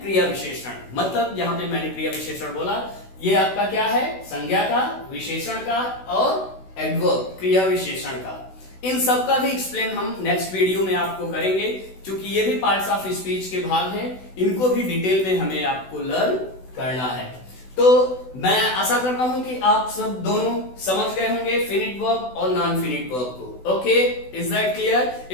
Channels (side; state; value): right; late; 16 ms